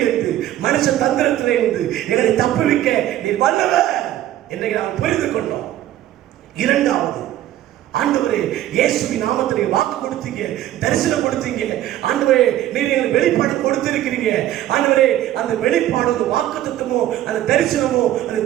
மனுஷ தந்திரத்திலிருந்து எங்களை தப்புவிக்க நீர் வல்லவர் இன்றைக்கு நாம் புரிந்து கொண்டோம். இரண்டாவது, ஆண்டவரே இயேசுவின் நாமத்தில் வாக்கு கொடுத்தீங்க, தரிசனம் கொடுத்தீங்க. ஆண்டவரே நீர் எங்களுக்கு வெளிப்பாடு கொடுத்திருக்கிறீங்க. ஆண்டவரே அந்த வெளிப்பாடு, அந்த வாக்குத்தத்தமோ, அந்த தரிசனமோ, அந்த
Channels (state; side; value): quieter; left; 13.2 dB